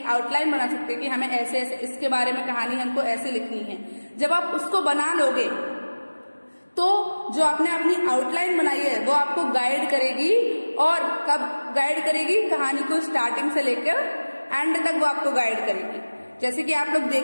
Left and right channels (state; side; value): inverted; both; correlation -1.00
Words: आउटलाइन बना सकते हैं कि हमें ऐसे ऐसे इसके बारे में कहानी हमको ऐसे लिखनी है। जब आप उसको बना लोगे तो जो आपने अपनी आउटलाइन बनाई है वो आपको गाइड करेगी। और कब गाइड करेगी? कहानी को स्टार्टिंग से लेकर एंड तक वो आपको गाइड करेगी। जैसे कि आप लोग